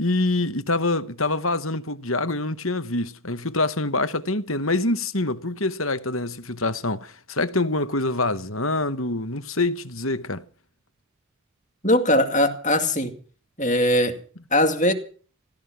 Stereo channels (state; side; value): normal; both; correlation 0.06